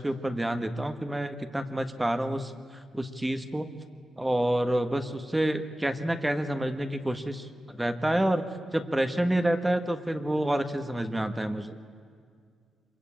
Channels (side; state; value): both; normal; correlation 0.96